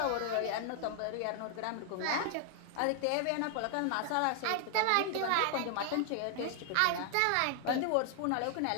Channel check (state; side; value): different; both; correlation 0.00